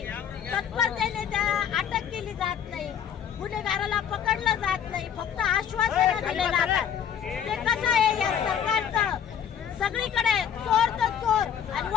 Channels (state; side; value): quieter; right; 8.6 dB